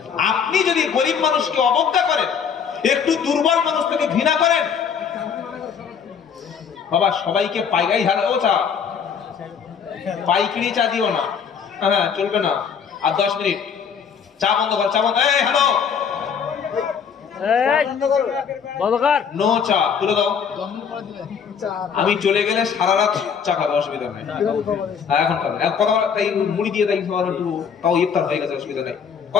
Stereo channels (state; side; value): quieter; right; 6.9 dB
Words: আপনি যদি গরিব মানুষকে অবজ্ঞা করেন, একটু দুর্বল মানুষ থেকে ঘৃণা করেন, বাবা সবাইকে পাইকারি হারে ও চা, পাইকারি চা দিও না, হ্যাঁ চলবে না। আর 10 মিনিট চা বন্ধ কর, চা বন্ধ। এই হ্যালো, নো চা তুলে দাও। আমি চলে গেলে সারা রাত চা খাবে, অসুবিধা নেই। এখন খাবে কথা বলা, তাই মুড়ি দিয়ে তাই একটু, তাও ইফতার হয়ে গেছে, অসুবিধা নেই।